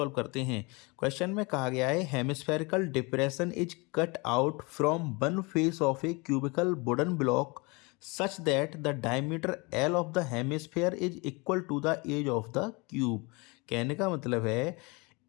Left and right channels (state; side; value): quieter; right; 27.5 dB